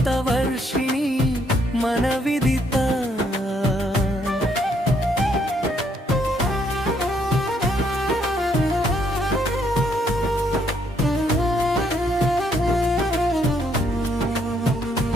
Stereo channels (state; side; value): normal; both; correlation 0.71